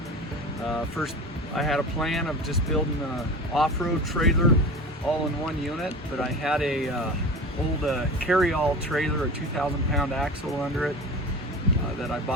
first I had a plan of just building an off-road trailer all in one unit, but I had a old carry-all trailer, a 2,000-pound axle under it that I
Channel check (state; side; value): normal; both; correlation 0.32